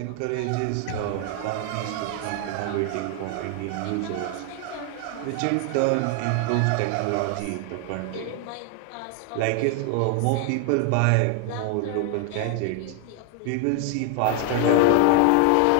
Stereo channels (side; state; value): both; different; correlation 0.00